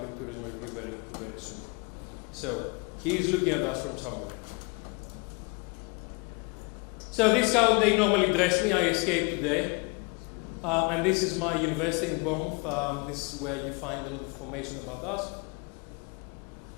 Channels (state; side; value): quieter; right; 30.9 dB